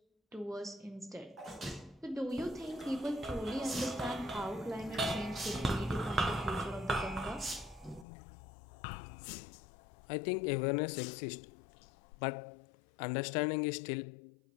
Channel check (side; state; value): right; drops out; at 8.1 s